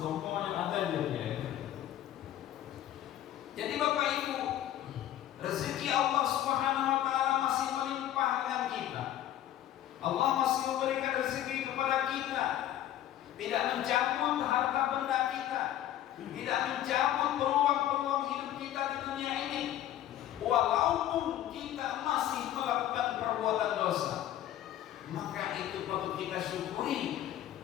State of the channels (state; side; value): quieter; right; 12.3 dB